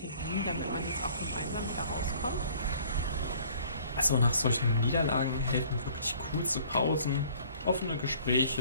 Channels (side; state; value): both; inverted; correlation -0.54